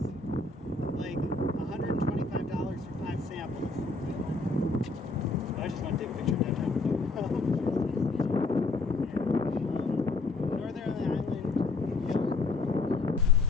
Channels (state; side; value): quieter; right; 3.7 dB